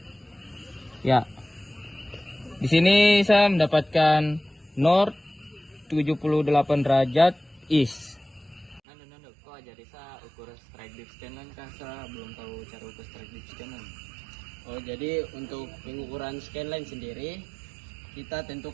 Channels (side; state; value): left; drops out; at 8.8 s